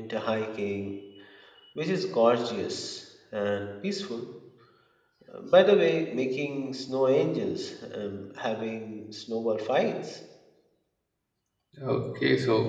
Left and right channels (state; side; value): identical; both; correlation 1.00